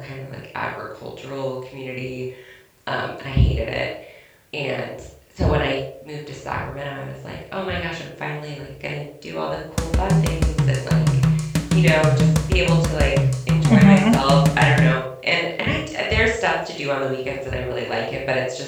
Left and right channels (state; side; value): identical; both; correlation 1.00